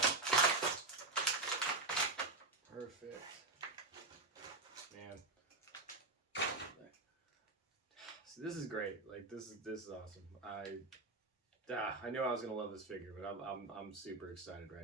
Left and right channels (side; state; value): left; quieter; 3.3 dB